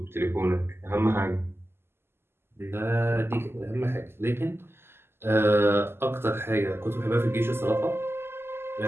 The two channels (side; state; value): left; late; 0.12 ms